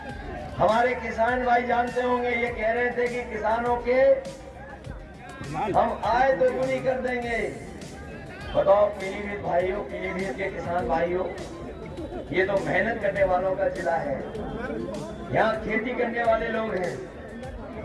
हमारे किसान भाई जानते होंगे, ये कह रहे थे कि किसानों के हम आय दोगुनी कर देंगे। बताओ पीलीभीत भाइयों, पीलीभीत के किसान भाइयों, ये तो मेहनत करने वालों का जिला है। यहाँ खेती करने वाले लोग हैं।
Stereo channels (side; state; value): both; identical; correlation 1.00